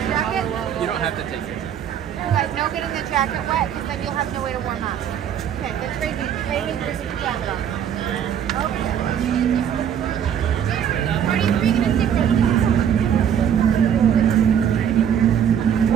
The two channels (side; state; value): left; quieter; 8.9 dB